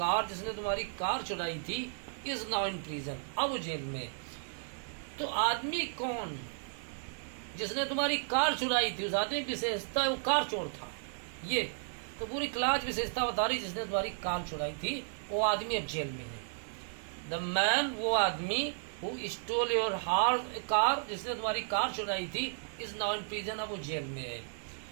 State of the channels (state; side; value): silent; left; digital silence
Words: जिसने तुम्हारी कार चुराई थी, इज नाउ इन प्रिजन, अब वो जेल में। तो आदमी कौन, जिसने तुम्हारी कार चुराई थी, उस आदमी की विशेषता है वो कार चोर था। ये तो पूरी क्लास विशेषता बता रही, जिसने तुम्हारी कार चुराई थी वो आदमी अब जेल में है। द मैन, वो आदमी, हु स्टोल योर कार, जिसने तुम्हारी कार चुराई थी, इज नाउ इन प्रिजन, अब वो जेल में है।